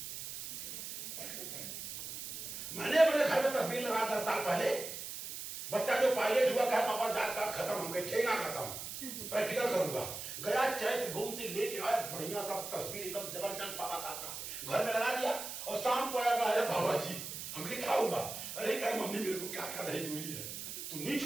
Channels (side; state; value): right; noise; hiss, 7 dB below the sound